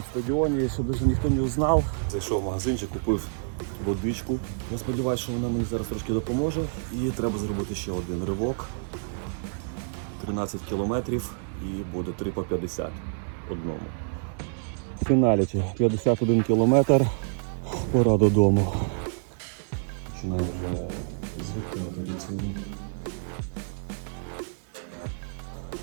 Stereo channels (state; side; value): silent; left; 60 dB below the other